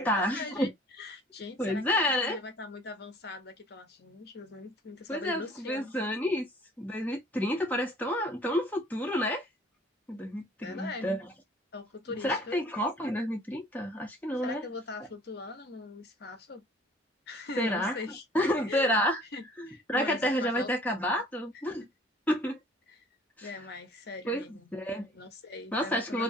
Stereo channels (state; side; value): normal; both; correlation 0.53